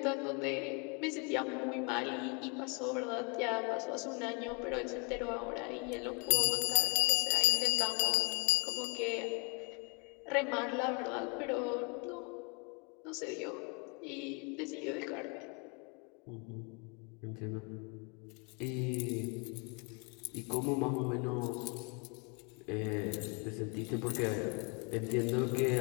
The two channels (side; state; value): right; quieter; 33.8 dB